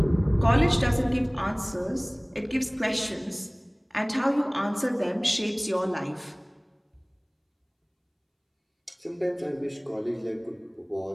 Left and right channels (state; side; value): identical; both; correlation 1.00